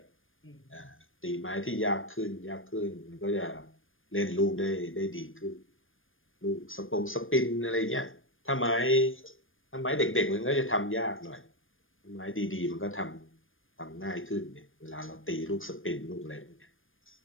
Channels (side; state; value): right; late; 0.59 ms